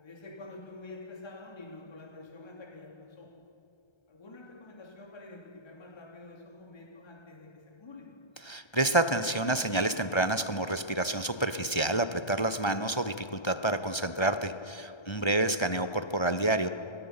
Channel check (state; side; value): late; right; 1.3 ms